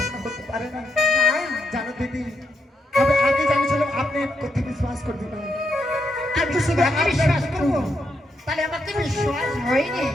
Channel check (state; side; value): normal; both; correlation 0.80